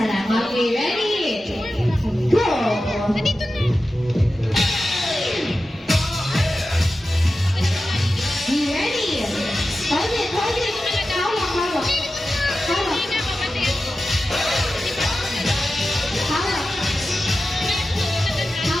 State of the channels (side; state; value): both; normal; correlation 0.93